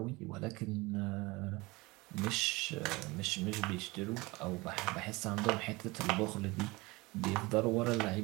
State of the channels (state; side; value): quieter; left; 23.3 dB